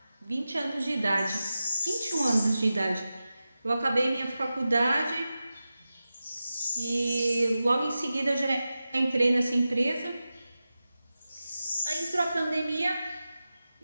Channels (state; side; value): inverted; both; correlation -0.93